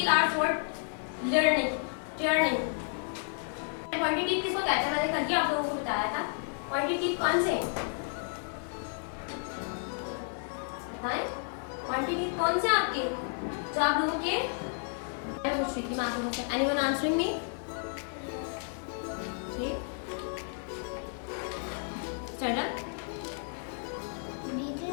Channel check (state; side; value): silent; right; 57 dB below the other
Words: are for turning. Pointed teeth किसको कहते हैं? मैंने कल ही आप लोगों को बताया था। पॉइंटेड टीथ कौन से हैं? बताएं। पॉइंटेड टीथ कौन से आपके, जो आप लोगों के? मैं पूछ रही थी मैं आप लोगों से। Anyone answering me? Stand up.